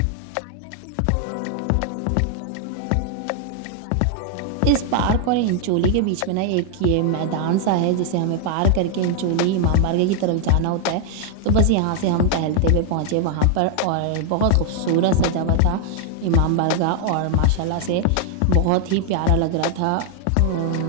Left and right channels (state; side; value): different; both; correlation 0.00